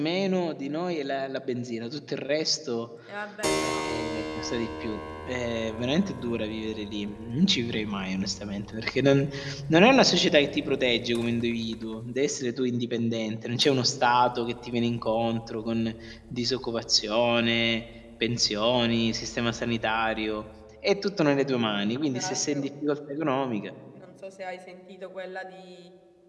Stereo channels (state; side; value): identical; both; correlation 1.00